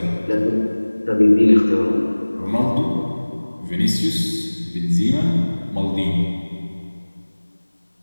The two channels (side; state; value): both; inverted; correlation -1.00